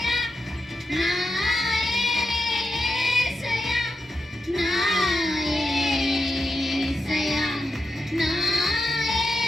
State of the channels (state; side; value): normal; both; correlation 0.87